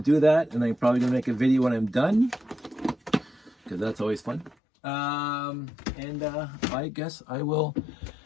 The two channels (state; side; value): drops out; right; at 4.5 s